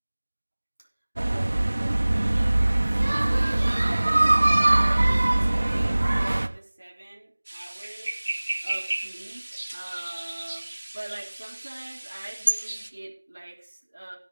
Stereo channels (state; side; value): inverted; both; correlation -1.00